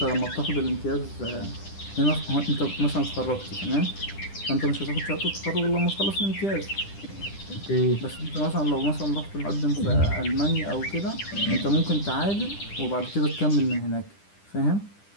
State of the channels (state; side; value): late; right; 10 ms